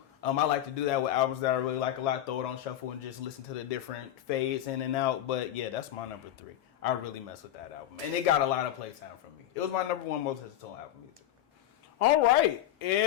I like to do that with albums that I really like a lot. Throw it on shuffle and just listen to the different fades in and out. But yeah, that's my number 3. I really mess with that album. And it got a lot of playtime from me. It was my number 1 most listened to album music. All right,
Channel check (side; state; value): right; quieter; 12.3 dB